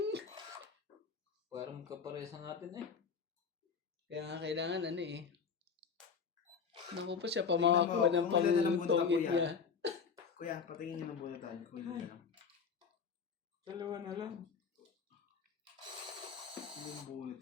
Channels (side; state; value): right; quieter; 6.0 dB